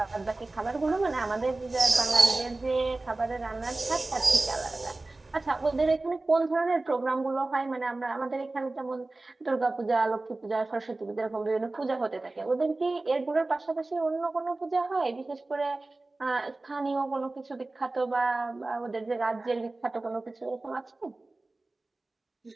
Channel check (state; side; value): quieter; left; 3.1 dB